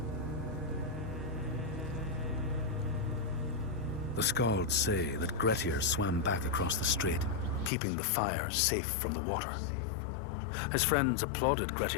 The Skalds say that Grettir swam back across the strait, keeping the fire safe from the water. His friends applauded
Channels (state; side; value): drops out; right; at 7.7 s